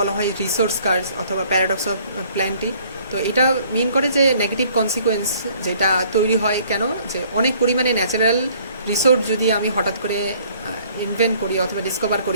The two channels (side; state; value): both; inverted; correlation -0.59